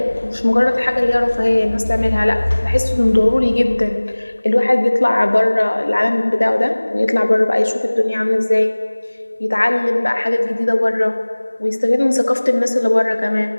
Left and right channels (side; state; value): both; inverted; correlation -1.00